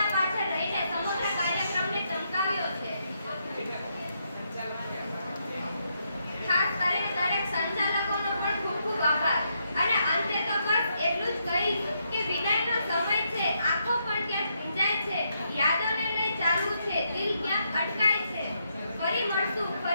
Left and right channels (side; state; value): both; inverted; correlation -0.78